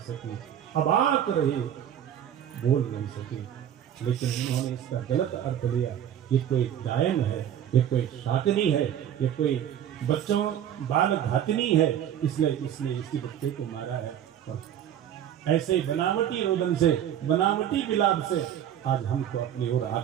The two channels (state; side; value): quieter; left; 10.2 dB